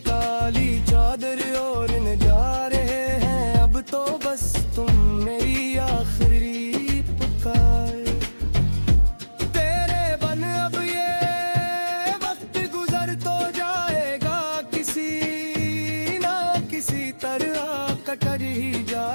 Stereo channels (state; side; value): inverted; both; correlation -1.00